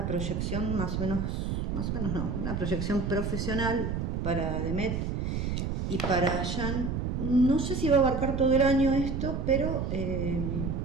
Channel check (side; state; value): right; noise; rumble, 1 dB below the sound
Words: proyección más o menos no, una proyección profesional para Demet y para Jan. No sé si va a abarcar todo el año esto, pero